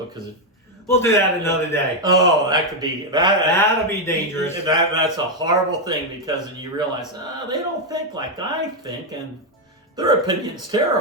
because we'll do that another day. Oh, that could be That'll be dangerous. That's a horrible thing because you realize they don't think like I think, and their opinion's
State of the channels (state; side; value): normal; both; correlation 0.02